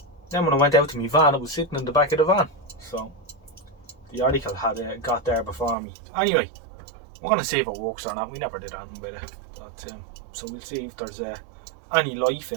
when I went out to my van, it was sitting in the back of the van. So the article had got there before me. Anyway, we're going to see if it works or not. We never did anything with it. But, so we'll see if there's any life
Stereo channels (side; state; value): left; drops out; at 5.8 s